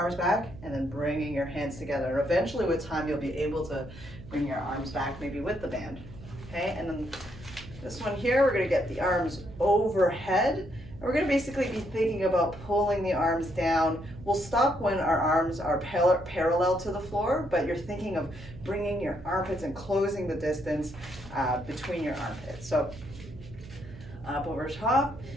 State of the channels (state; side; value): noise; right; hum, 16 dB below the sound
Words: back and then bringing your hands together. And eventually with time, you'll be able to bring your arms back maybe with the band. Okay, and then this one here, we're gonna get the arms overhead. And we're gonna basically be thinking about pulling the arms down. We'll stop when our arms are parallel to the floor, but you're thinking of bringing your armpits and closing the distance between your armpits. So up over top,